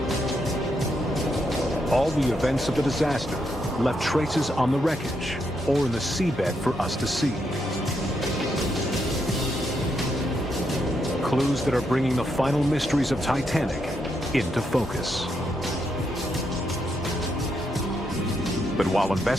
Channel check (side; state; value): both; normal; correlation 0.80